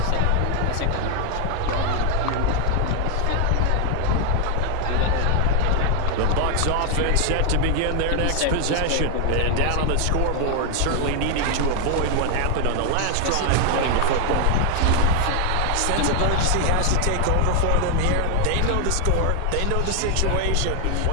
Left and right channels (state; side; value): different; both; correlation 0.00